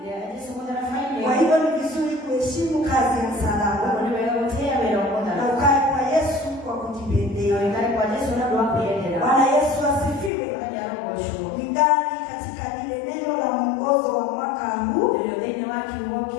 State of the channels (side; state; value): right; drops out; at 10.3 s